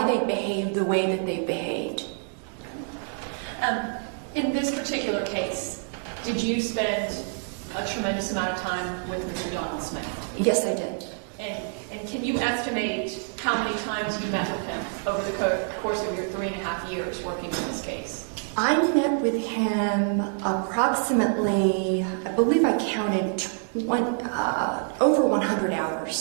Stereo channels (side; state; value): left; silent; 56 dB below the other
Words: they behave the way that they behaved. In this particular case, did you spend a tremendous amount of time with Mr. Donald Smith? Yes, I did. And can you estimate how many times you met with him over the course of your 3.5 years working on this case? I met with him approximately, I believe I counted over 100